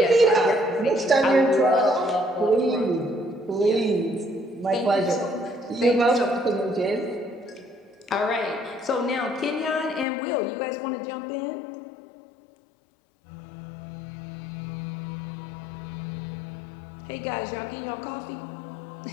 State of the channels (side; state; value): right; drops out; at 10.1 s